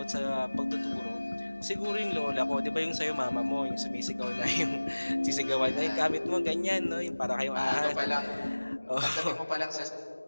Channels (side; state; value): both; inverted; correlation -1.00